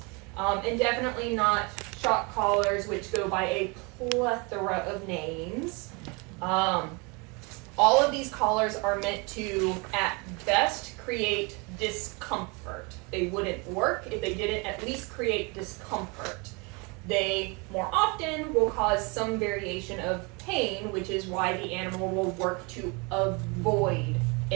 And definitely not shock collars, which go by a plethora of names. All of these collars are meant to, at best, create discomfort. They wouldn't work if they didn't at least create discomfort. They more often will cause some variation of pain, which is why the animal will work to avoid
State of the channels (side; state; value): left; quieter; 29.6 dB